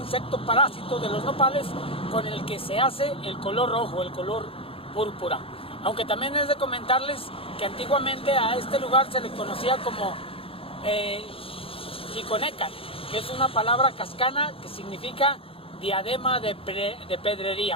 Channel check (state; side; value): late; right; 0.27 ms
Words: parásito de los nopales, con el que se hace el color rojo, el color púrpura. Aunque también es de comentarles que antiguamente a este lugar se le conocía como Chiconecal, que es una palabra cascana que significa diadema de